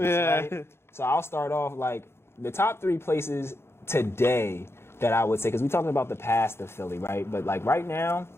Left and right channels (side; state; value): right; late; 0.12 ms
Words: right? So I'll start off, like, the top 3 places today that I would say, because we're talking about the past of Philly, right? But like right now,